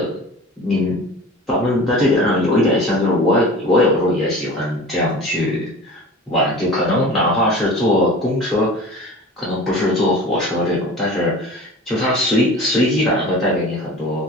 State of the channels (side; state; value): both; normal; correlation 0.38